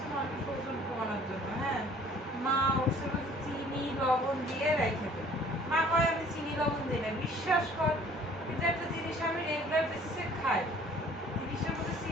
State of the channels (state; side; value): normal; both; correlation 0.54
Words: মানুষ ওজন কমানোর জন্য। হ্যাঁ, মা ওটসের মধ্যে চিনি লবণ দিয়ে রেখে দেয়। মা কয় আমি চিনি লবণ দিই না, বিশ্বাস কর। কিন্তু একটা জিনিস আমি রেগুলার বেসিসে খাই, জিনিসের মধ্যে